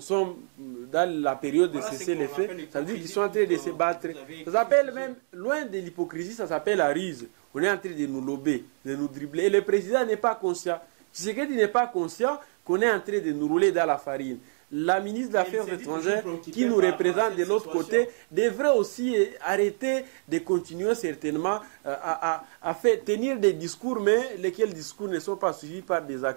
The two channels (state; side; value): silent; left; digital silence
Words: sommes dans la période de cesser les faits. Ça veut dire qu'ils sont en train de se battre. Ça s'appelle même, loin de l'hypocrisie, ça s'appelle la ruse. On est en train de nous lober, de nous dribbler. Et le président n'est pas conscient. Tshisekedi n'est pas conscient qu'on est en train de nous rouler dans la farine. La ministre des Affaires étrangères qui nous représente de l'autre côté devrait aussi arrêter de continuer certainement à faire tenir des discours, mais lesquels discours ne sont pas suivis par des